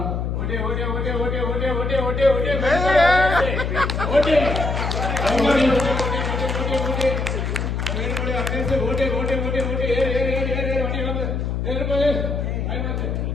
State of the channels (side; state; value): left; noise; hum, 1 dB below the sound